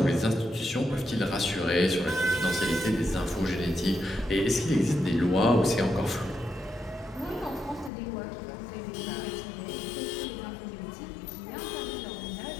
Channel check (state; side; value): drops out; right; at 7.9 s